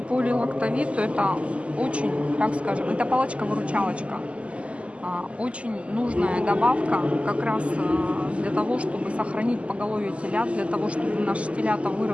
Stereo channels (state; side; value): late; left; 0.060 ms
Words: это очень, так скажем, это палочка-выручалочка. Очень нужная добавка как раз для того, чтобы сохранить поголовье телят, для того, чтобы наши телята